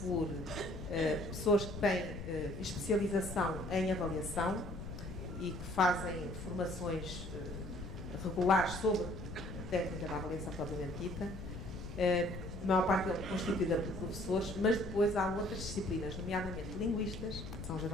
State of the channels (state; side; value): noise; left; rumble, 9 dB below the sound